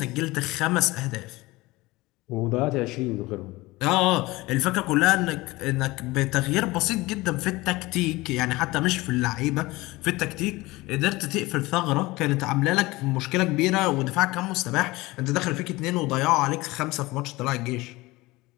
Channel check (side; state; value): right; quieter; 20.8 dB